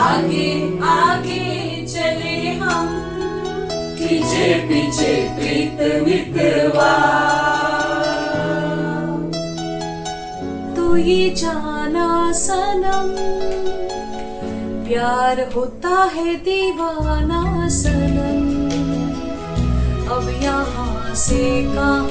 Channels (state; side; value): identical; both; correlation 1.00